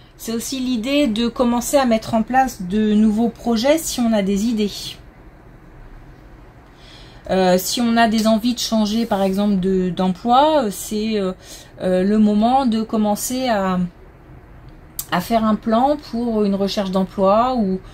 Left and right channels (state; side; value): identical; both; correlation 1.00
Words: l'idée de commencer à mettre en place de nouveaux projets si on a des idées. Si on a des envies de changer par exemple d'emploi, c'est le moment de commencer à faire un plan pour une recherche d'emploi